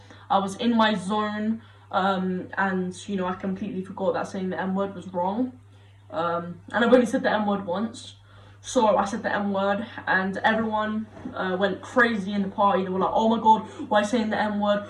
I was in my zone, and I completely forgot that saying the N-word was wrong. And I've only said the N-word once. So I said the N-word, and everyone went crazy in the party. They were like, oh my god, why are you saying the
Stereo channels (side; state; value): both; identical; correlation 1.00